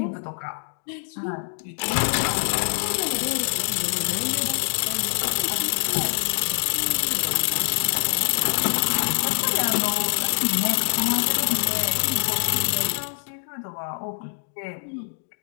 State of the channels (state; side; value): silent; right; digital silence